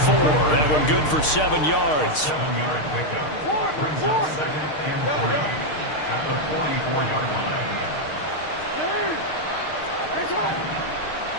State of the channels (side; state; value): right; late; 6.5 ms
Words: That one good for 7 yards. 7-yard pickup. Brings up 2nd and 3 at the 44-yard line.